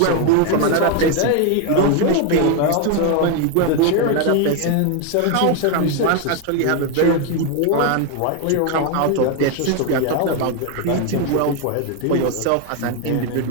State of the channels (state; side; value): different; both; correlation 0.01